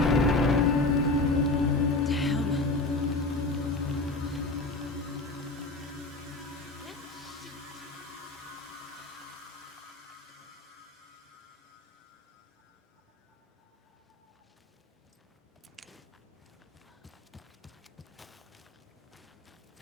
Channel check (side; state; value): right; quieter; 3.1 dB